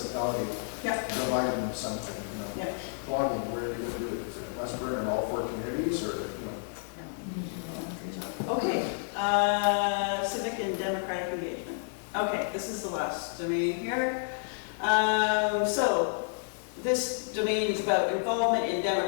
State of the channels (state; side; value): silent; right; digital silence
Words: Yeah. Provide them something, Yeah. Blogging, where are you gonna do it? Is it West Burn in all 4 communities, or, Okay, civic and democratic engagement. Okay, this is the last domain here. So this domain is about involvement in